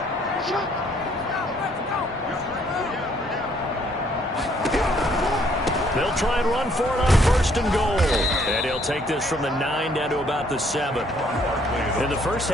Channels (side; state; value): both; normal; correlation 0.65